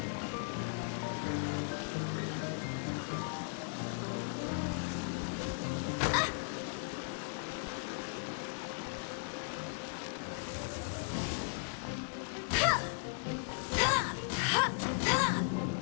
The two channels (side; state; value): right; silent; digital silence